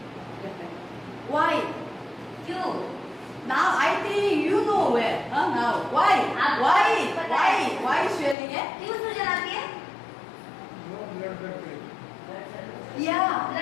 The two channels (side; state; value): right; drops out; at 8.3 s